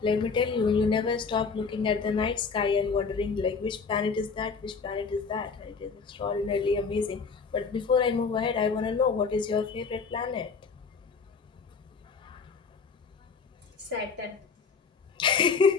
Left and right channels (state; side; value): quieter; right; 5.2 dB